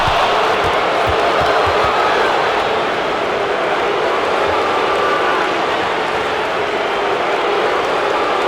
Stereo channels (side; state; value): both; identical; correlation 1.00